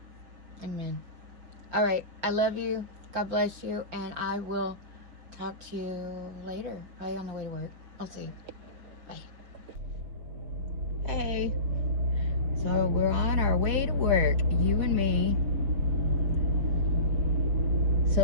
Amen. All right, I love you. God bless you, and I will talk to you later. Probably on the way to work. I'll see you. Bye. Hey. So we're on our way to work, you and me.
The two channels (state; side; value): late; left; 5.4 ms